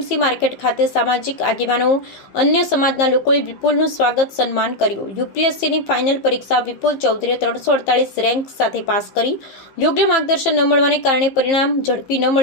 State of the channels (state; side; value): late; right; 15 ms